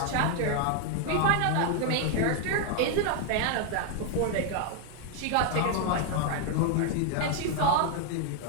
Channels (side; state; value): both; different; correlation 0.00